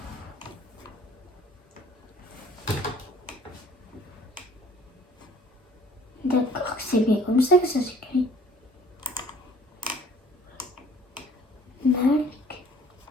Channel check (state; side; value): normal; both; correlation 0.54